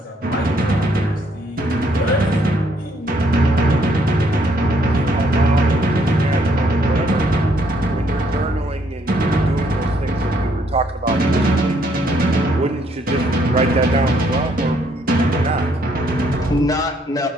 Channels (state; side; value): normal; both; correlation 0.69